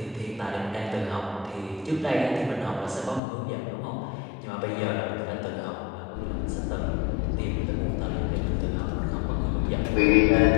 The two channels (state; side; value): drops out; right; at 3.2 s